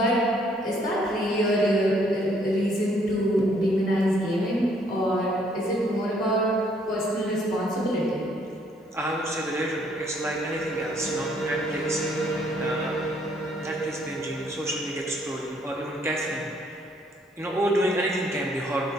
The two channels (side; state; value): both; normal; correlation 0.66